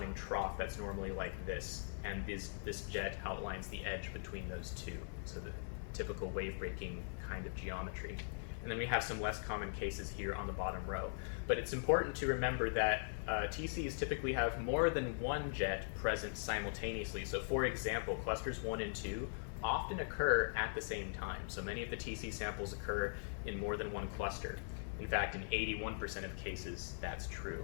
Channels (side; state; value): right; silent; digital silence